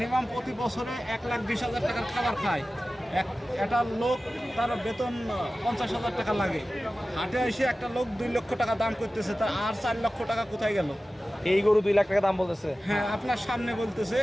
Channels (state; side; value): normal; both; correlation 0.95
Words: প্রতি বছরে 1,20,000 টাকার খাবার খায়। একটা লোক তার বেতন 50,000 টাকা লাগে, হাটে এসে একটা লোক 2 লক্ষ টাকা দাম করতেছে, তার আর 4 লক্ষ টাকা কোথায় গেল? এই গরু 2 লাখ টাকা দাম বলতেছে। হ্যাঁ, আপনার সামনে বলতেছে,